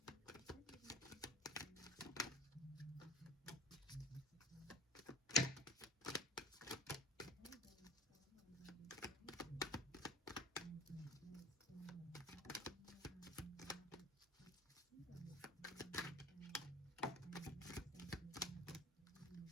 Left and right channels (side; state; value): both; normal; correlation 0.42